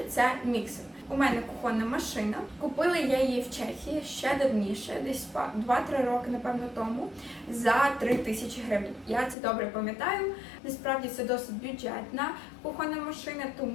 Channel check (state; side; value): drops out; right; at 9.3 s